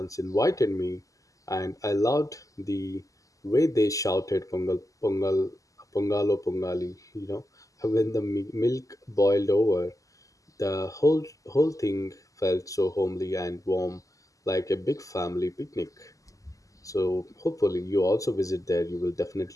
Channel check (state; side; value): late; right; 0.16 ms